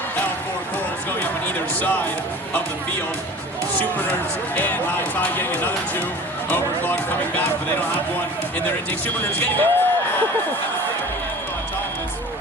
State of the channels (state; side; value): normal; both; correlation 0.40